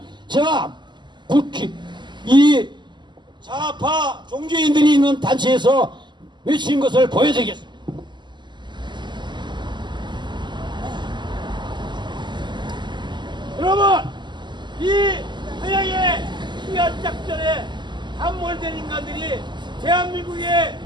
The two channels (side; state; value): left; late; 0.22 ms